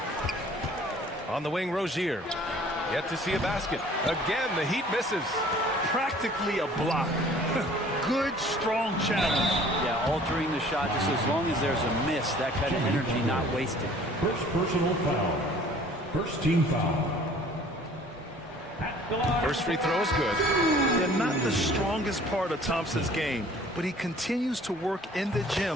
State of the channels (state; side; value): normal; both; correlation 0.52